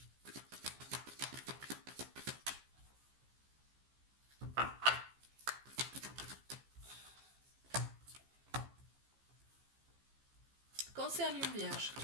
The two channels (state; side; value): late; left; 15 ms